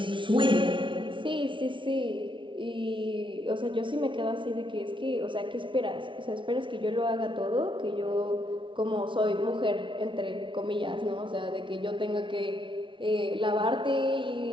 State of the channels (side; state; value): left; late; 0.24 ms